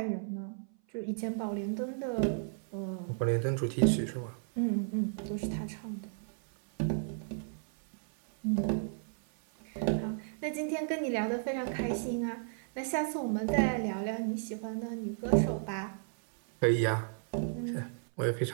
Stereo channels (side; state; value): left; silent; 55 dB below the other